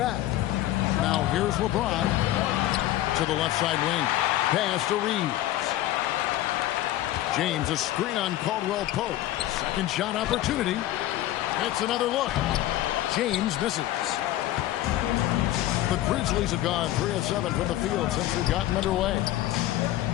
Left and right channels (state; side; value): quieter; right; 14.5 dB